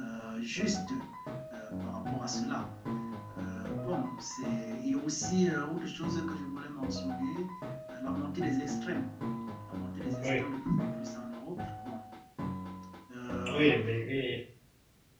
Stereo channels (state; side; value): identical; both; correlation 1.00